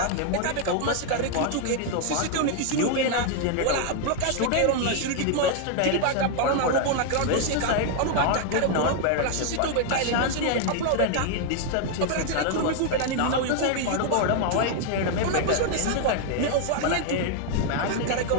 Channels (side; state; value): both; different; correlation 0.00